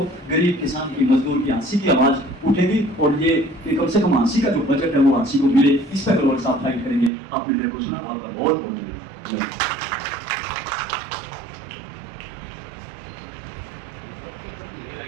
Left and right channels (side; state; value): left; drops out; at 7.1 s